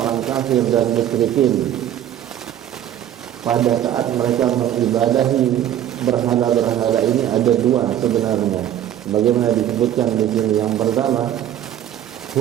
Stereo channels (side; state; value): left; quieter; 11.1 dB